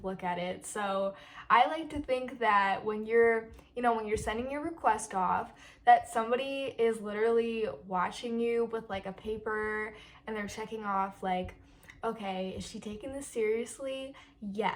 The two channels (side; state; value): both; identical; correlation 1.00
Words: at it. So I like to think that when you're sending your request off, that somebody is literally watching you with like a paper and they're checking off like, okay, is she taking this seriously?